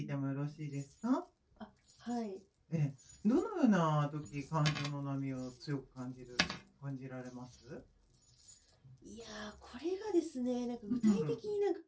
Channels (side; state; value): both; identical; correlation 1.00